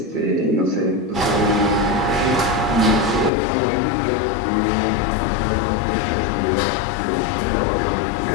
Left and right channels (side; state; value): right; drops out; at 3.3 s